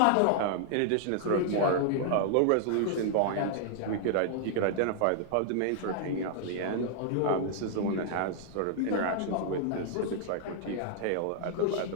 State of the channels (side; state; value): both; different; correlation -0.01